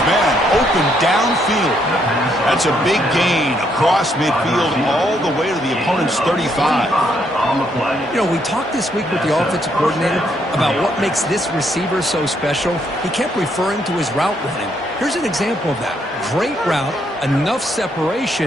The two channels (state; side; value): normal; both; correlation 0.73